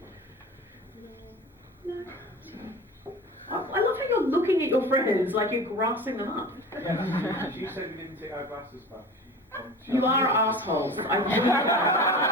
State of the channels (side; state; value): both; normal; correlation 0.35